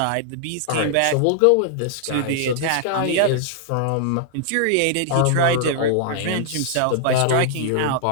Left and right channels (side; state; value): both; different; correlation -0.01